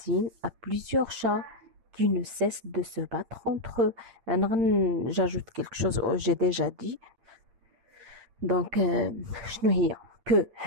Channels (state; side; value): late; left; 8.8 ms